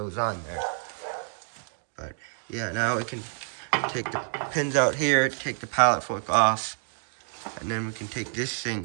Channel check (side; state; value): left; silent; 59 dB below the other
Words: on there. But yeah, now we can take the pins out here, take the pallet fork off, and then we can take this